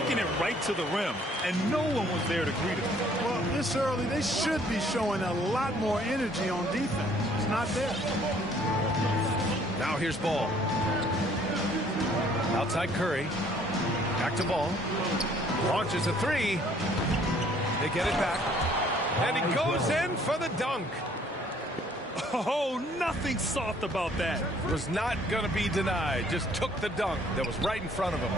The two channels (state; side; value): normal; both; correlation 0.60